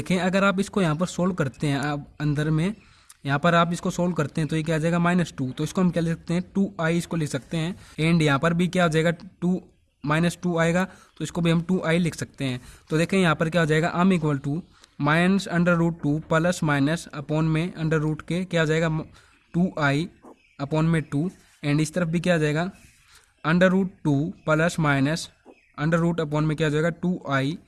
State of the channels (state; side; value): identical; both; correlation 1.00